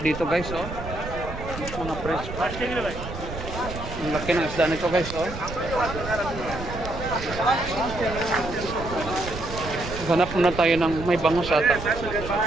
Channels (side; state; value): right; noise; rumble, 9 dB below the sound